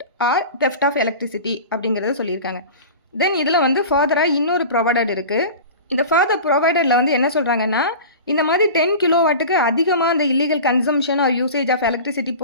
or theft of electricity அப்படிங்கிறத சொல்லியிருக்காங்க. தென் இதில் வந்து ஃபர்தராக இன்னொரு ப்ரொவைடட் இருக்குது. இந்த ஃபர்தர் ப்ரொவைடரில் வந்து என்ன சொல்கிறாங்கன்னா, இந்த மாதிரி 10 கிலோவாட்டுக்கு அதிகமாக அந்த illegal consumption or usage of electricity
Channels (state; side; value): inverted; both; correlation -0.34